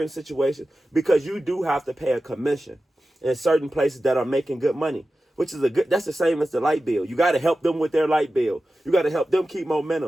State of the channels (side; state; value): both; normal; correlation 0.93